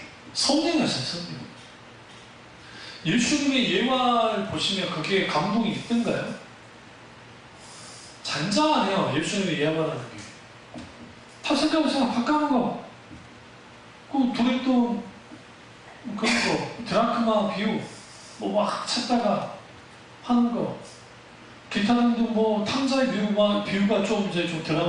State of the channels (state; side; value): identical; both; correlation 1.00